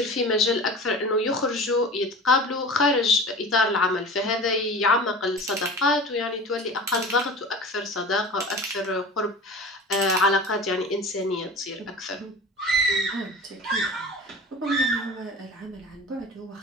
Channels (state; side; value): normal; both; correlation 0.36